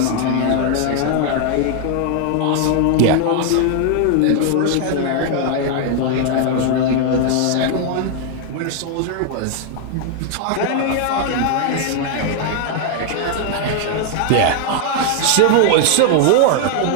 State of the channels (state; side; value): different; both; correlation 0.00